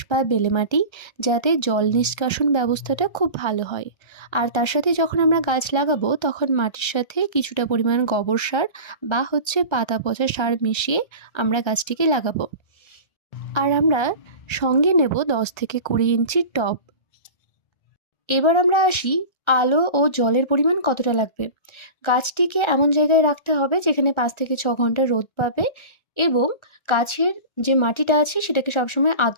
বা বেলে মাটি, যাতে জল নিষ্কাশন ব্যবস্থাটা খুব ভালো হয়। আর তার সাথে যখন আমরা গাছ লাগাবো তখন মাটির সাথে কিছুটা পরিমাণ গোবর সার বা পাতা পচা সার মিশিয়ে আমরা গাছটিকে লাগাবো। আর আমরা সঙ্গে নেব 10 থেকে 20 ইঞ্চির টব। এবার আমরা আসি আলো ও জলের পরিমাণ কতটা লাগবে। গাছটিকে এমন জায়গায় রাখতে হবে যেখানে 5 থেকে 6 ঘন্টা রোদ পাবে, এবং গাছের যে মাটিটা আছে সেটাকে সবসময়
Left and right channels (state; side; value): late; right; 1.3 ms